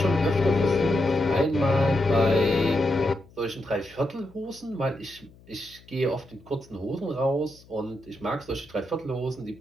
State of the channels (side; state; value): left; noise; hum, 25 dB below the sound